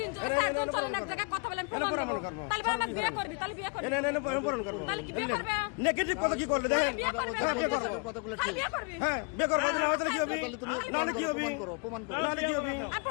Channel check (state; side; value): quieter; right; 35.7 dB